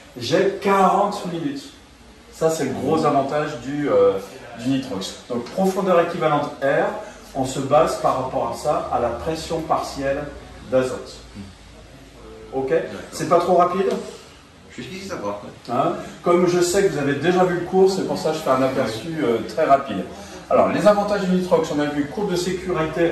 j'ai 40 minutes. Ça c'est le gros avantage du nitrox. Donc profondeur équivalente R, on se base par rapport à ça, à la pression partielle d'azote. Ok? C'est pas trop rapide? Jusqu'ici, ça va. Hein? Comme je sais que vous avez déjà vu le cours, c'est pour ça que je fais un aperçu très rapide. Alors, les avantages du nitrox, on a vu courbe de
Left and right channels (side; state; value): both; identical; correlation 1.00